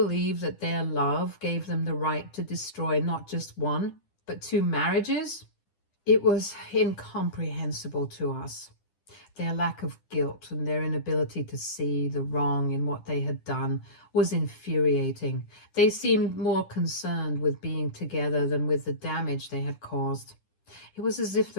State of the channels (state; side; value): late; right; 10 ms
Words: that their love gave them the right to destroy not just one, but 2 marriages? It was incomprehensible to us. Their lack of guilt and their inability to see the wrong in what they had done was infuriating. They seemed more concerned with being together than with the damage they had caused. It was as if